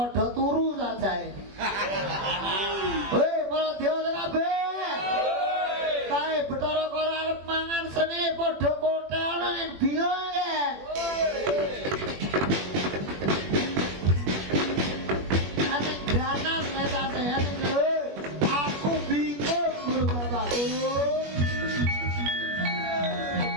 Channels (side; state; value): left; late; 21 ms